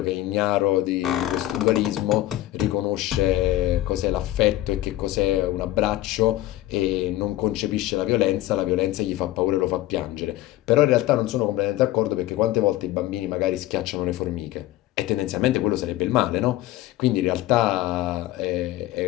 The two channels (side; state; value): right; quieter; 15.5 dB